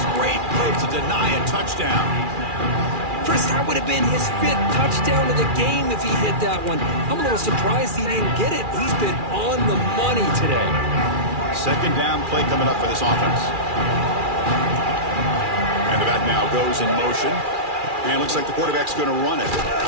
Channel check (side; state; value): left; late; 2.4 ms